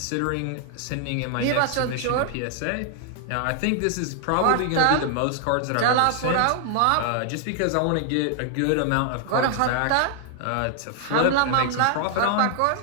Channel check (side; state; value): both; different; correlation 0.00